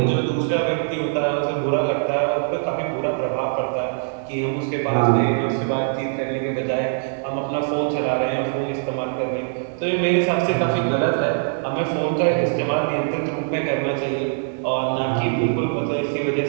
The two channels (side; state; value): left; silent; 63 dB below the other